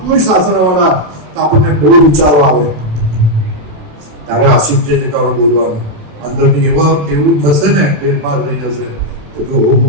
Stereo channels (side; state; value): left; late; 27 ms